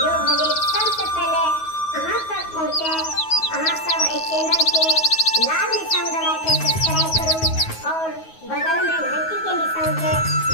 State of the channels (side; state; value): right; late; 9.4 ms